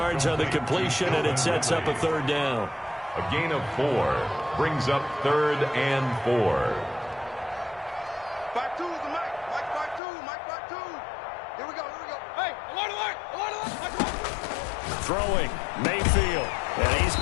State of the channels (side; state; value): right; drops out; at 10.0 s